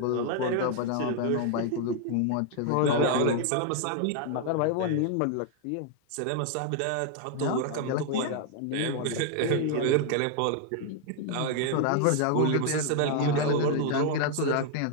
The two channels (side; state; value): both; different; correlation 0.00